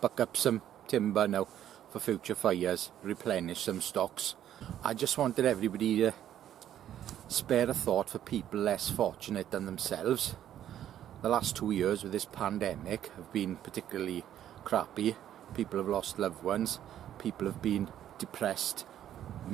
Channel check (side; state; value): left; quieter; 11.1 dB